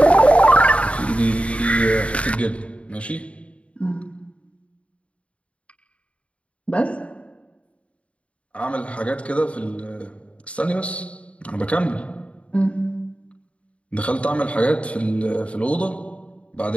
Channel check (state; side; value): late; right; 0.062 ms